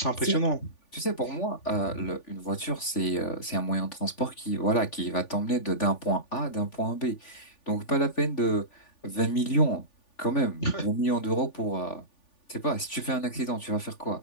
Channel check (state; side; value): late; right; 3.4 ms